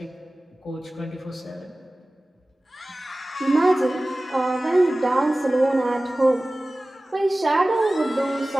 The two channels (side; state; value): both; normal; correlation 0.97